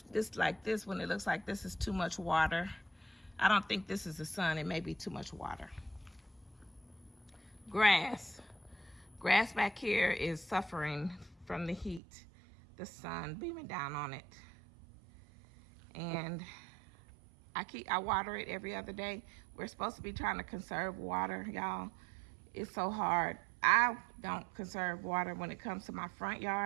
like this one, it looks like this is too much water. I don't think this is the sun. It may be too much water. Grass. Grass back here is suffering from the heat, the sun beaming down on it. And I water it every other day. We're supposed to be trying to conserve water, y'all. It's so hard. I don't conserve water when it comes to my front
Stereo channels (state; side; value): drops out; left; at 12.0 s